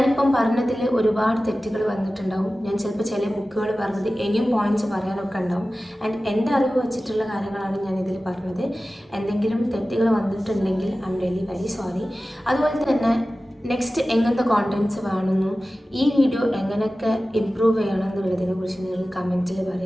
പറഞ്ഞതിൽ ഒരുപാട് തെറ്റുകൾ വന്നിട്ടുണ്ടാവും. ഞാൻ ചിലപ്പോൾ ചില ബുക്കുകൾ പറഞ്ഞത് ഇനിയും പോയിൻറ്റ്സ് പറയാനൊക്കെ ഉണ്ടാവും. ആൻഡ് എൻ്റെ അറിവ് വച്ചിട്ടുള്ള കാര്യങ്ങളാണ് ഞാനിതിൽ പറഞ്ഞത്. എന്തെങ്കിലും തെറ്റുകൾ വന്നിട്ടുണ്ടെങ്കിൽ I am really very sorry. അതുപോലെ തന്നെ നെക്സ്റ്റ് എങ്ങനത്തെ കോണ്ടൻറ്റ്സ് വേണമെന്നും ഈ വീഡിയോ എങ്ങനെയൊക്കെ ഇമ്പ്രൂവ് ചെയ്യണം എന്നുള്ളതിനെ കുറിച്ച് നിങ്ങൾ കമൻറ്റിൽ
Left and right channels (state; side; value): normal; both; correlation 0.96